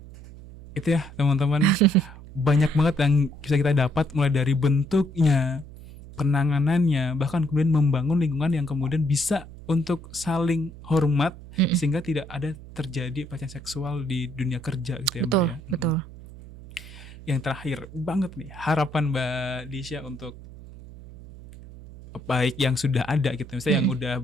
Itu ya teman-teman. Banyak banget yang bisa kita dapat, mulai dari bentuknya, penanganannya, bahkan kemudian membangun lingkungan yang kemudian bisa untuk saling hormat Mm-mm. sehingga tidak ada terjadi pelecehan seksual di dunia kerja gitu ya Mbak Betul, ya. betul. Yang terakhir banget nih, harapan Mbak Disha untuk baik yang sudah ada gitu, misalnya yang udah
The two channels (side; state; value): right; noise; hum, 16 dB below the sound